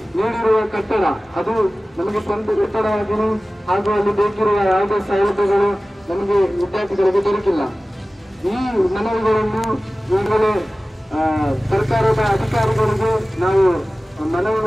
ನೀಡಿರುವ ಕಟ್ಟಡ ಅದು ನಮಗೆ ಸ್ವಂತ ಕಟ್ಟಡವಾಗಿಯೂ ಹಾಗೂ ಅಲ್ಲಿ ಬೇಕಿರುವ ಯಾವುದೇ ಸೌಲಭ್ಯಗಳು ನಮಗೆ ವಿದ್ಯಾರ್ಥಿಗಳಿಗೆ ದೊರಕಿಲ್ಲ. ಈ ಮನವಿಗಳನ್ನು ಈಗಲೇ ಸರ್ಕಾರದ ಅಧಿಕಾರಿಗಳಿಗೆ ನಾವು ಮನವಿ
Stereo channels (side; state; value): both; normal; correlation 0.97